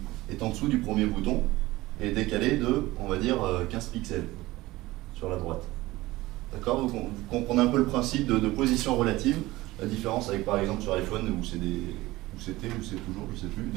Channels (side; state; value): left; quieter; 18.8 dB